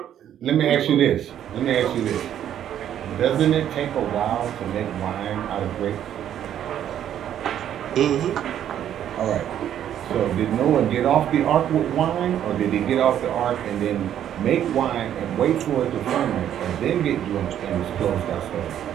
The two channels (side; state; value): left; quieter; 10.4 dB